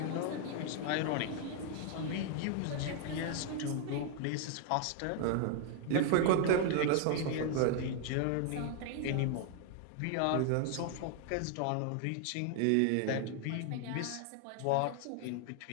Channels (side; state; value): both; different; correlation 0.00